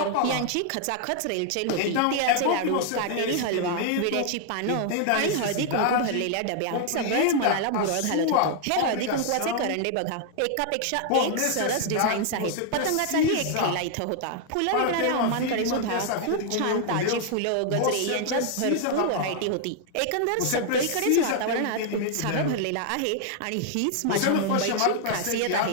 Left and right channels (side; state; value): both; different; correlation 0.00